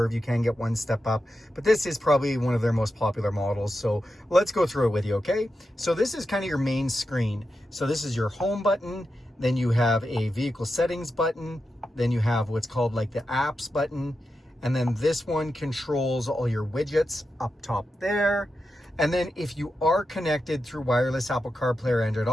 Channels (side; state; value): both; normal; correlation 0.89